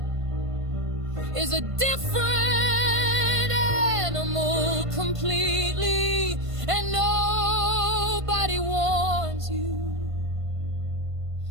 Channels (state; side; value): late; left; 1.5 ms